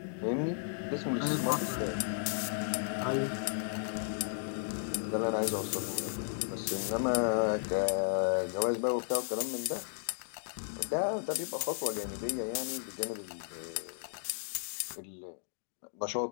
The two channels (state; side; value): silent; right; digital silence